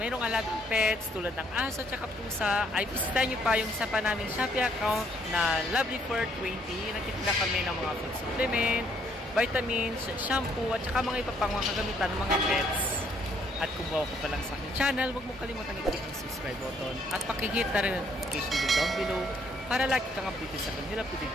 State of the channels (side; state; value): both; normal; correlation 0.67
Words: alagang pets tulad ng aso at pusa, ay bisitahin nyo pa yung isa pa naming Shopee account na Lovely for 20. Nagtitinda kami ng mga food supplement, vitamins, shampoo, at saka mga iba pang mga kagamitan ng mga pets. At kung bago ka pa lang sa aking channel, huwag mo kalimutan i-click ang subscribe button at pakihit na rin ang notification bell down below para lagi kang updated sa aking updated